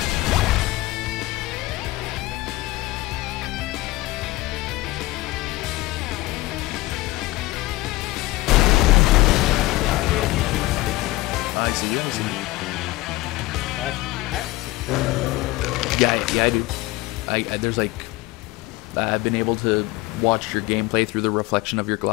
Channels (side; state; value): right; quieter; 19.5 dB